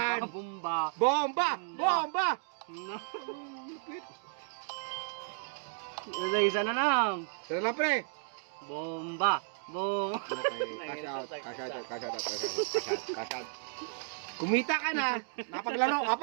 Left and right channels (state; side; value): silent; left; digital silence